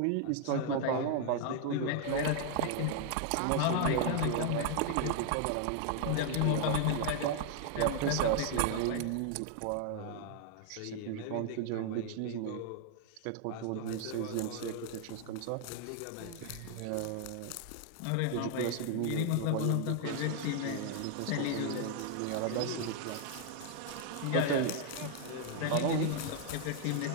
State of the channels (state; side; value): different; both; correlation 0.00